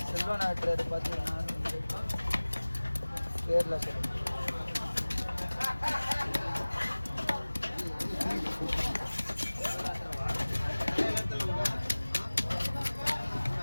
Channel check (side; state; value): both; inverted; correlation -1.00